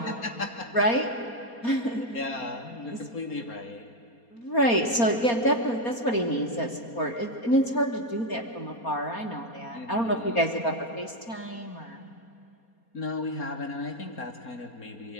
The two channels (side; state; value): right; late; 4.3 ms